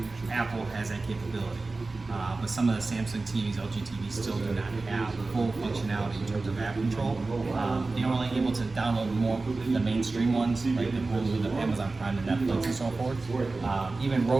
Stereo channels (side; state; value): left; quieter; 3.5 dB